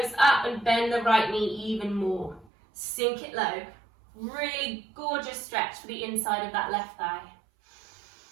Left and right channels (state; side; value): drops out; left; at 2.5 s